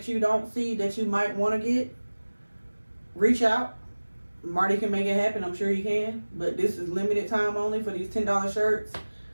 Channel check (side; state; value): both; inverted; correlation -1.00